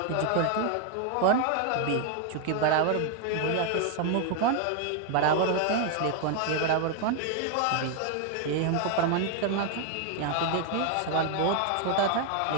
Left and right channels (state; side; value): different; both; correlation 0.01